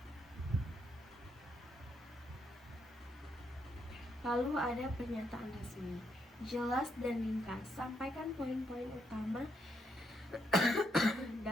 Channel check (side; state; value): both; normal; correlation 0.76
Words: Lalu ada pernyataan resmi, jelas dan ringkas, sampaikan poin-poin utama